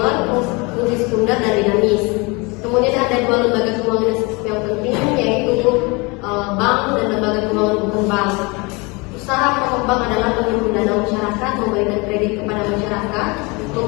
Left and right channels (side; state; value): right; quieter; 27.3 dB